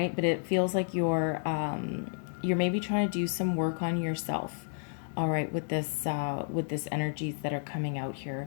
But it feels like you're maybe trying to do some work on yourself, all right, with this energies that are coming out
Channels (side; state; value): right; silent; 57 dB below the other